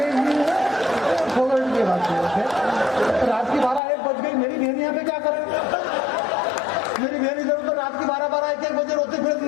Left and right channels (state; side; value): drops out; right; at 3.8 s